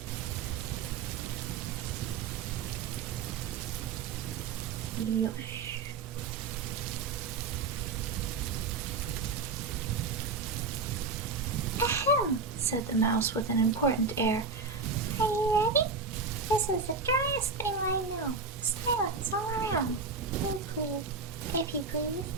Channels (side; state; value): left; quieter; 4.6 dB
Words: Yosh. Ahem, said the mouse with an important air. Are you ready? This is the driest thing I know. Silence all around. If you please.